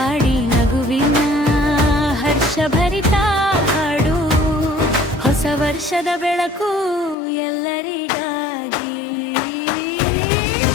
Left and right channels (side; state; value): right; drops out; at 7.2 s